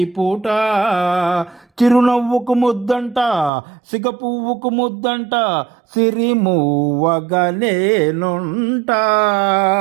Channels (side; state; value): left; drops out; at 3.5 s